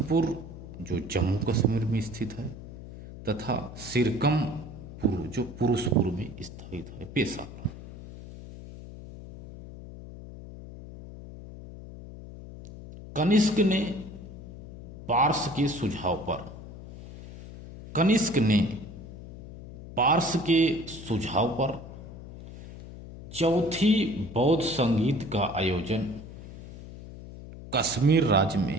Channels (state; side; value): noise; left; hum, 14 dB below the sound